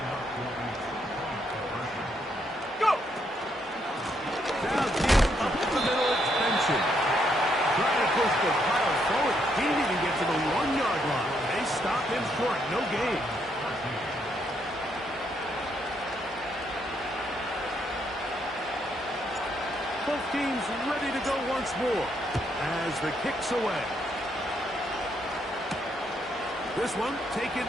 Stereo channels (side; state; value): both; normal; correlation 0.75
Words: Go. Down deep, up the middle, it's Benson. Trying to push the pile forward. He didn't even get to the 1-yard line. They stop him short. No gain. Both teams ready to go once more as the kick's away. This one taken